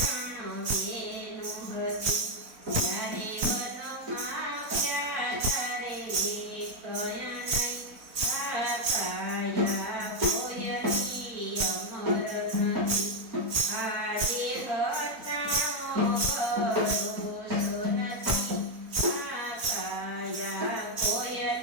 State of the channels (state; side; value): late; left; 4.0 ms